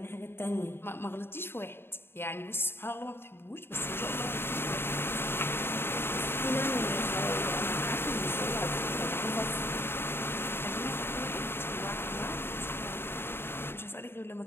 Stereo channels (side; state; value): right; late; 0.11 ms